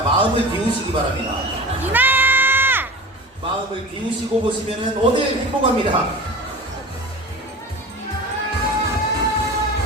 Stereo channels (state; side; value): normal; both; correlation 0.34